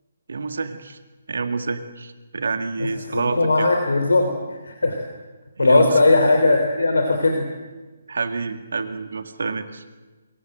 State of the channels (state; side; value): inverted; both; correlation -0.88